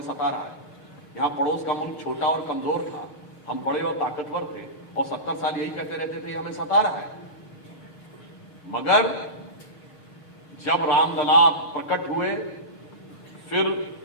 सता रहा है। यहाँ पड़ोस का मुल्क छोटा और कमजोर था, हम बड़े और ताकतवर थे, और 70 साल यही कहते रहते थे हमें सता रहा है। मगर जब रामलला प्रकट हुए, फिर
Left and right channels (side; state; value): right; late; 6.6 ms